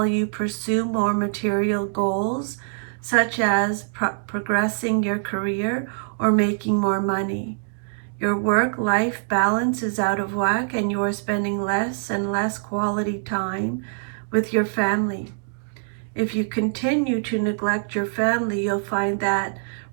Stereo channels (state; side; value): silent; left; digital silence